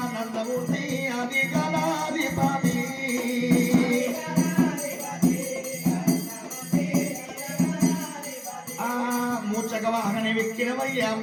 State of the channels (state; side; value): identical; both; correlation 1.00